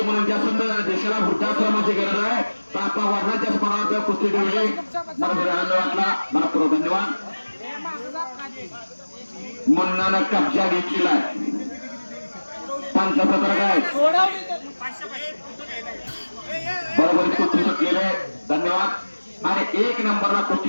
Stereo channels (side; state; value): both; inverted; correlation -1.00